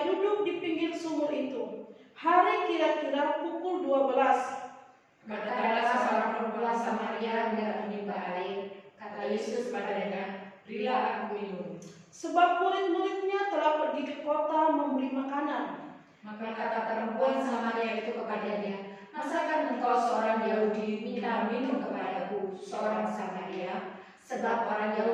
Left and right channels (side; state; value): both; identical; correlation 1.00